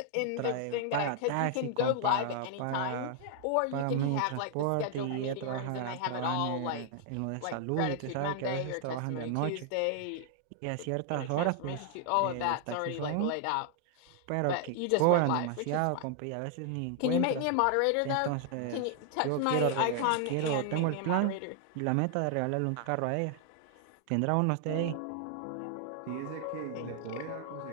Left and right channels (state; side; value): different; both; correlation 0.00